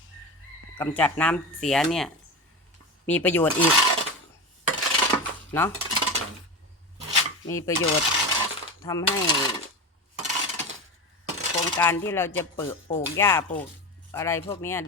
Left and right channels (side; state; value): both; normal; correlation 0.23